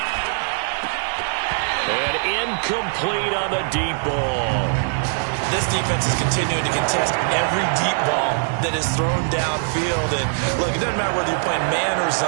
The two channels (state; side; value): silent; left; digital silence